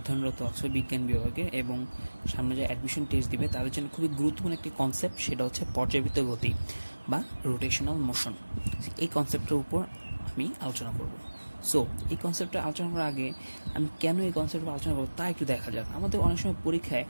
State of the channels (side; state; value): both; inverted; correlation -1.00